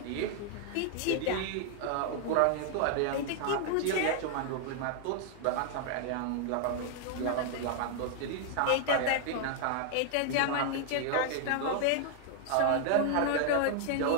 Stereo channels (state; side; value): different; both; correlation 0.00